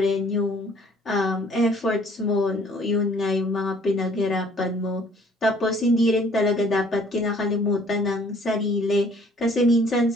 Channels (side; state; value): both; normal; correlation 0.57